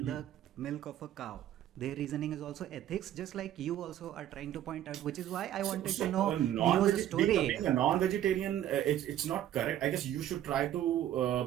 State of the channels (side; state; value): left; quieter; 11.8 dB